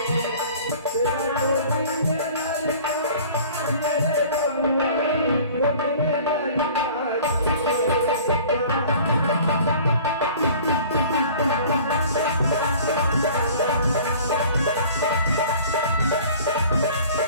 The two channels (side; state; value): both; inverted; correlation -0.47